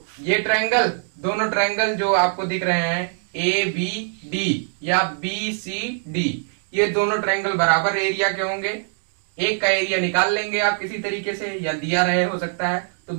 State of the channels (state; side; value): silent; left; 64 dB below the other